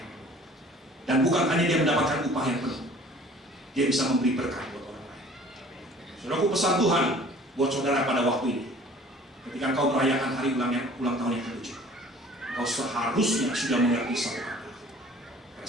penuh. Dan bukan hanya dia mendapatkan upah yang penuh, dia bisa memberi berkat buat orang lain. Saudaraku, pesan Tuhan buat saudara pada waktu ini, ketika kau merayakan hari ulang tahun yang ke-7, kau seharusnya sudah mengerti satu kata:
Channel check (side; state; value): both; normal; correlation 0.50